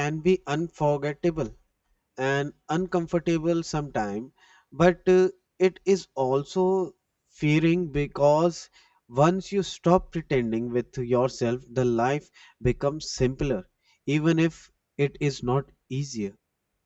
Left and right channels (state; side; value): identical; both; correlation 1.00